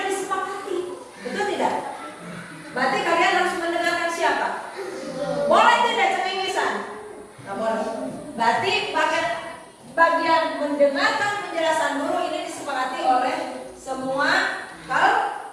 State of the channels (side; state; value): both; identical; correlation 1.00